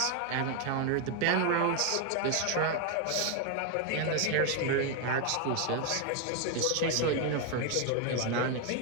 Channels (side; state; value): both; different; correlation 0.01